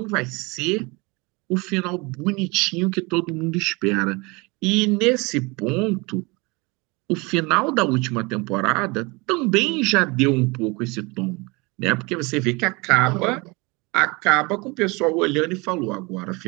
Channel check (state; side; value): quieter; left; 26.2 dB